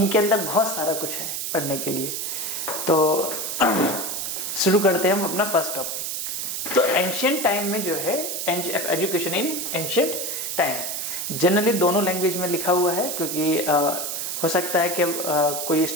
अंदर बहुत सारा कुछ है पढ़ने के लिए। तो शुरू करते हैं हम अपना फर्स्ट टॉपिक। तो एंशिएंट टाइम में जो है education in ancient time, generally दोनों लैंग्वेज में लिखा हुआ है, क्योंकि हो सकता है कि कोई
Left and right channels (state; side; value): noise; right; hiss, 3 dB below the sound